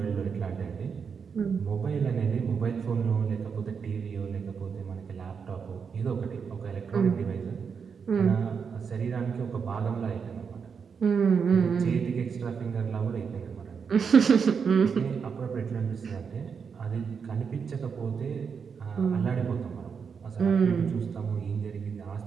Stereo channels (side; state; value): left; quieter; 6.2 dB